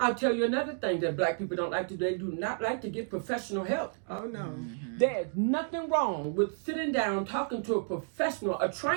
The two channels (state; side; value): silent; left; 57 dB below the other